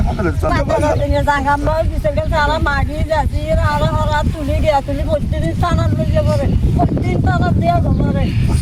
খাবে তারা মাগি যাচ্ছি আর তুলি গিয়া তুলি প্রতিদিন টানার লইয়া পড়ে প্রতিদিন টানার দেওয়া জমারে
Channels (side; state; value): both; identical; correlation 1.00